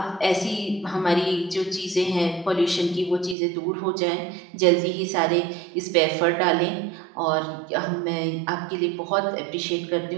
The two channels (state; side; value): drops out; left; at 3.4 s